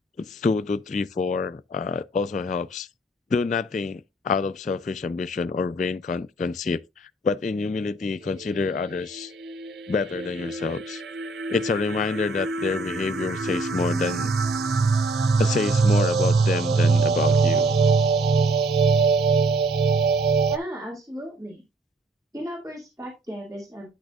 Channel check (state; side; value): normal; both; correlation 0.61